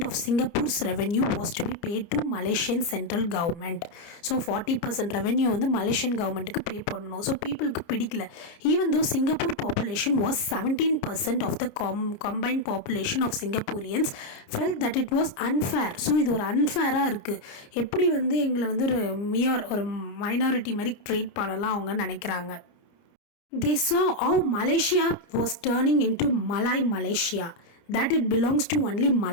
of Singapore's revenue was to be paid to Malaysian central government. So 40% revenue வந்து Malaysian governmentக்கு pay பண்ணணும். So peopleக்கு பிடிக்கல. Even though Singapore population was 17% of the combined population of Singaporeans felt that it was unfair. So இது ஒரு அன்ஃபேராக இருக்குது, எப்படி வந்து எங்களை வந்து ஒரு மைனாரிட்டி மாதிரி ட்ரீட் பண்ணலாம் அவங்க நினைக்கிறாங்க. They saw how Malaysia was turning into Malay Malaysia, that it belongs to only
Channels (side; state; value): right; late; 29 ms